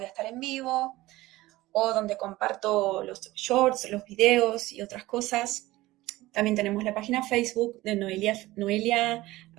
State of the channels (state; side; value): quieter; left; 18.1 dB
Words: a estar en vivo o donde comparto los shorts, los videos y otras cosas. También tenemos la página Facebook de Noelia